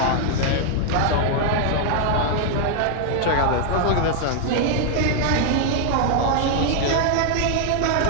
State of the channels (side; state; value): both; different; correlation 0.00